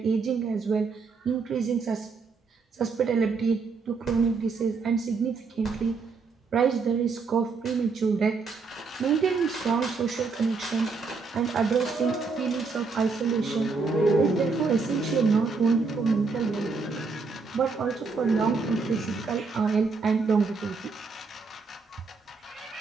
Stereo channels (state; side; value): quieter; left; 4.6 dB